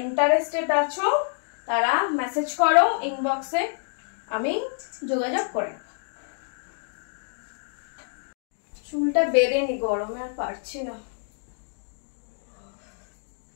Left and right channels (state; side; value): silent; right; digital silence